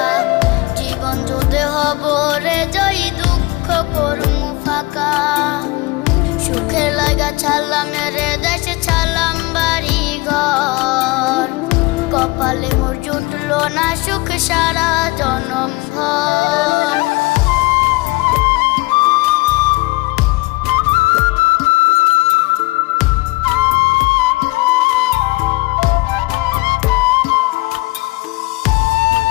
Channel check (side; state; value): right; quieter; 22.9 dB